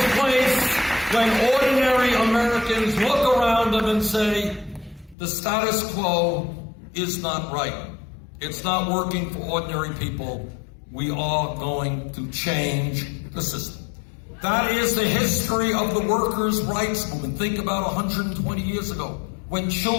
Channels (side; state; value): right; drops out; at 5.2 s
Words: place when ordinary Americans look around them and say, the status quo is not right. It's not working for ordinary people. We are going to change the system. That is the history of the workers' rights movement. Think about 120 years ago, when